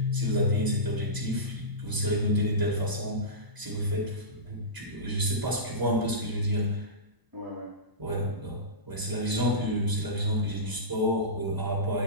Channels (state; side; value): late; left; 1.0 ms